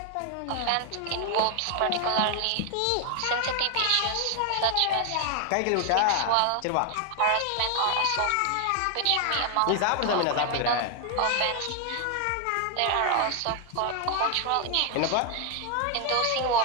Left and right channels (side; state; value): both; different; correlation 0.00